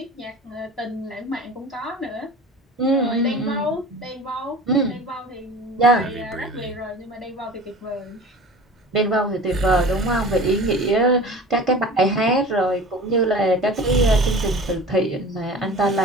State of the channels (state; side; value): normal; both; correlation 0.39